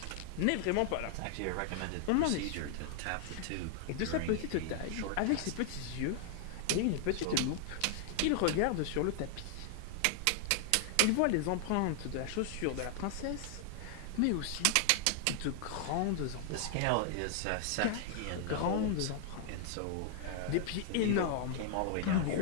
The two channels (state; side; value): different; both; correlation 0.00